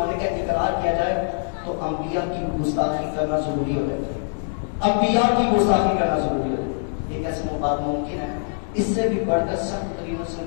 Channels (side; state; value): right; silent; digital silence